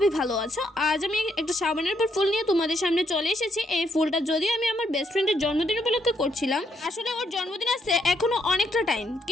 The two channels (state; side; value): normal; both; correlation 0.75